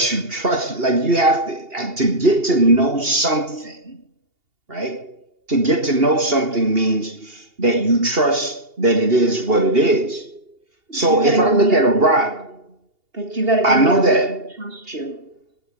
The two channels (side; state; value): left; late; 2.8 ms